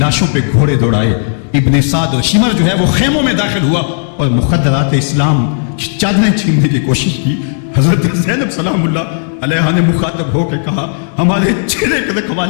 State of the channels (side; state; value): right; silent; digital silence